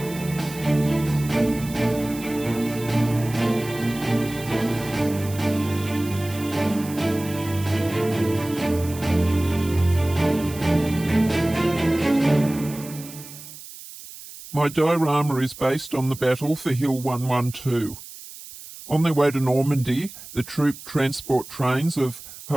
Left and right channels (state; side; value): noise; right; hiss, 15 dB below the sound